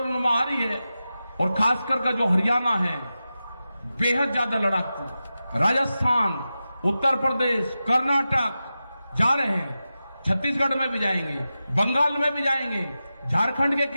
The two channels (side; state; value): both; inverted; correlation -0.93